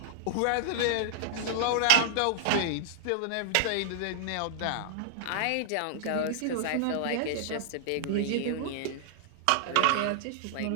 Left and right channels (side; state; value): both; different; correlation -0.01